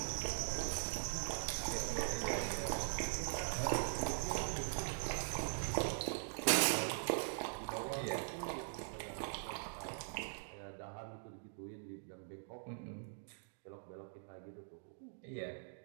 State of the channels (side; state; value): left; silent; digital silence